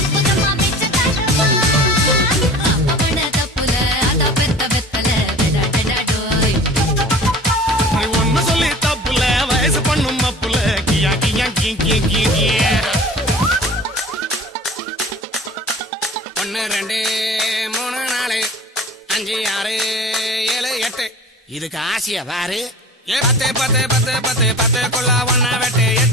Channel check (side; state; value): both; normal; correlation 0.42